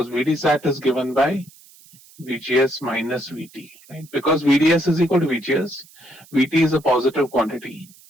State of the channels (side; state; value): right; noise; hiss, 25 dB below the sound